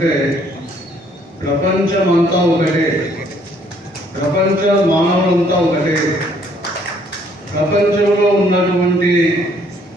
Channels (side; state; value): both; normal; correlation 0.64